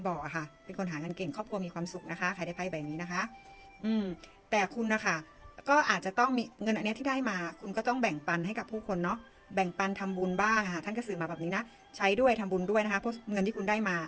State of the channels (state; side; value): identical; both; correlation 1.00